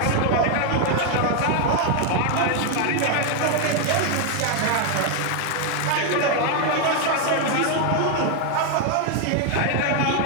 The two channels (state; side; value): different; both; correlation 0.01